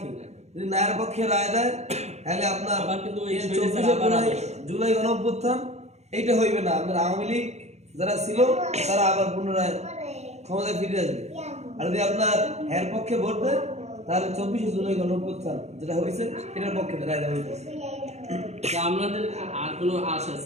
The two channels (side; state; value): left; late; 0.32 ms